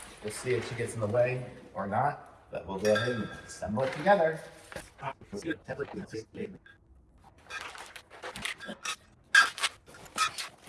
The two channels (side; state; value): both; identical; correlation 1.00